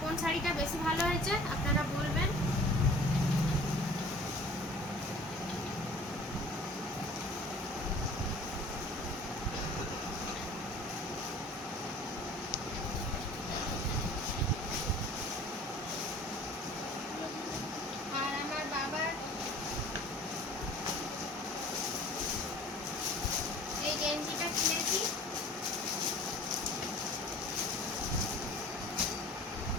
কোন শাড়িটা বেশি ভালো হয়েছে আপনারা বলবেন। আর আমার বাবার এই গেঞ্জিটা কিনেছি,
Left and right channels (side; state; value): both; normal; correlation 0.46